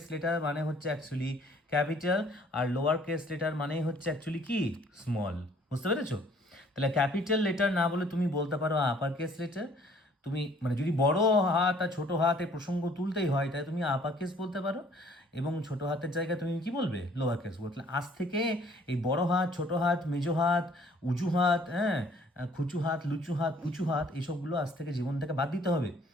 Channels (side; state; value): both; normal; correlation 0.58